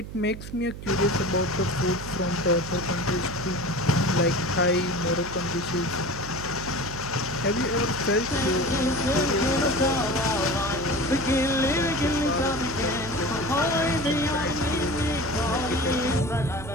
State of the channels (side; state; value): right; noise; hum, 11 dB below the sound